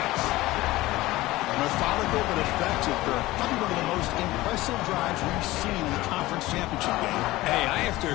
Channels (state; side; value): quieter; right; 18.2 dB